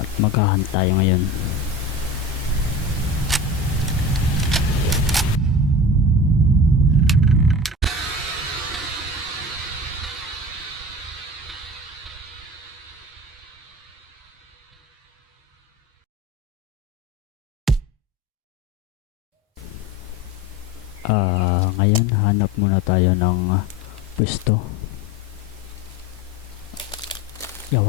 maghahunt tayo ngayon. Ngayon hanap muna tayo ng pwesto.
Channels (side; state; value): both; normal; correlation 0.34